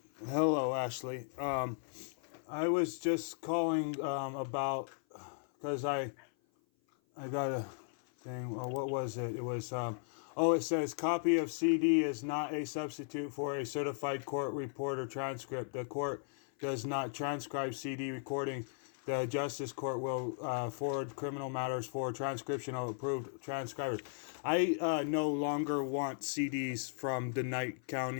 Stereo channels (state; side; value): silent; right; 53 dB below the other